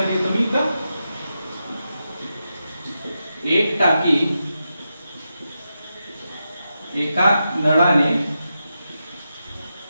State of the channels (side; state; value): both; inverted; correlation -0.88